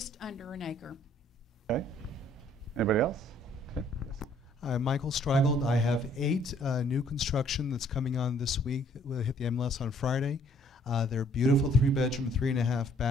under an acre. Okay. Anybody else? Okay. I'm Michael Streigold. I have 8 new construction that's coming on this week. We'll hit the MLS on Friday. They're beautiful 3-bedroom, 3.5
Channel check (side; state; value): both; normal; correlation 0.62